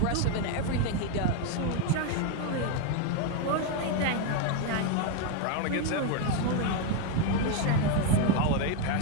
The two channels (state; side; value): different; both; correlation 0.01